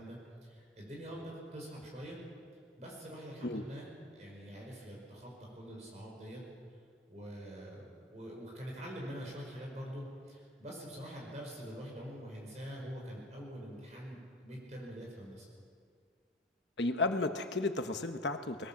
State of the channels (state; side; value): normal; both; correlation 0.35